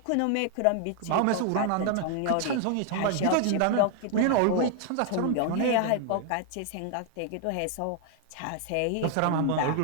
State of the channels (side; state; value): both; different; correlation 0.00